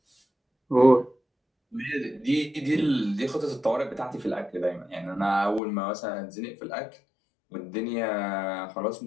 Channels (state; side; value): drops out; right; at 5.6 s